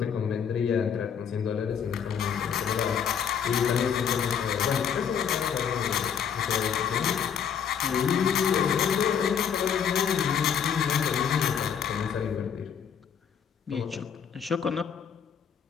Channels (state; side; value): quieter; right; 7.8 dB